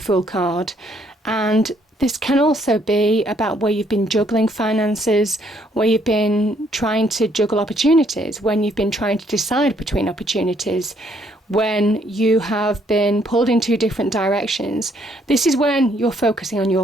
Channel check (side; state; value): both; normal; correlation 0.68